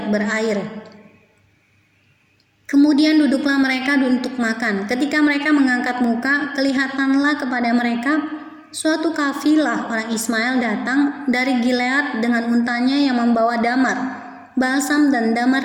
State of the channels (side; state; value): both; identical; correlation 1.00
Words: berair. Kemudian duduklah mereka untuk makan. Ketika mereka mengangkat muka, kelihatanlah kepada mereka suatu kafilah orang Ismail datang dari Gilead dengan untanya yang membawa damar, balsam dan damar